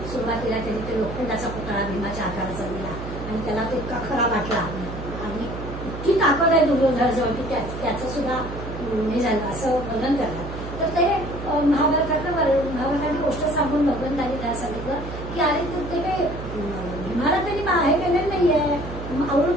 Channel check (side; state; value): right; noise; hum, 9 dB below the sound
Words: सुरुवातीला त्यांनी ते लोखंडाचा पुतळा भीमाच्या आकाराचा दिला आणि त्याला तो इतका खरा वाटला आणि इतकी ताकद आहे दुर्योधनाजवळ की त्याचं सुद्धा हे झालं असं वर्णन करतात. तर ते महाभारतातली गोष्ट सांगून भगवंतांनी त्याला सांगितलं की अरे ते काही भीमाला त्यांनी हे केलेलं नाहीये,